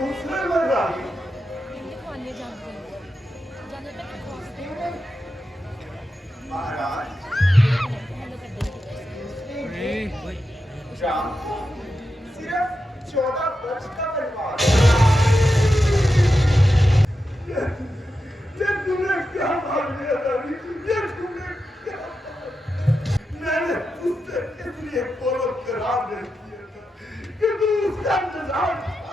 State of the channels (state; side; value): normal; both; correlation 0.89